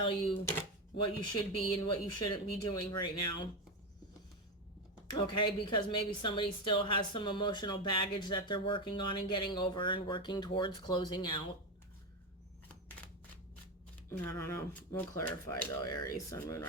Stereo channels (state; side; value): normal; both; correlation 0.13